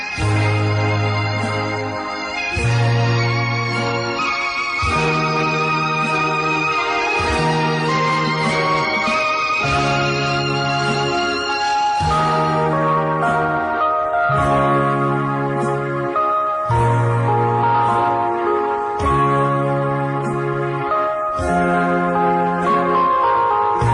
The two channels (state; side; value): identical; both; correlation 1.00